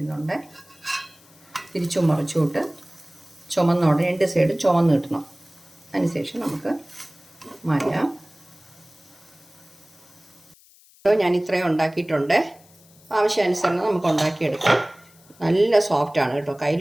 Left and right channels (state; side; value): noise; left; hiss, 27 dB below the sound